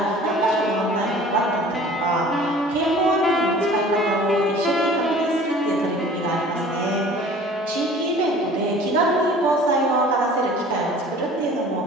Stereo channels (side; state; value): both; normal; correlation 0.47